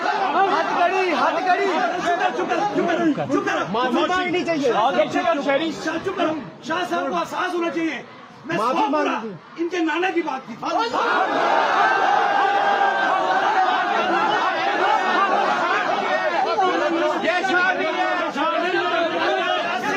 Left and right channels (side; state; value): both; identical; correlation 1.00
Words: माफी मांगनी चाहिए। चुप करो, शाह साहब को एहसास होना चाहिए। मैं माफी मांग इनके नाना की बात की थी।